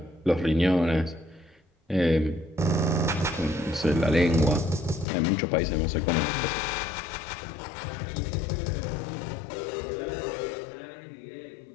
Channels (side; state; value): right; drops out; at 5.1 s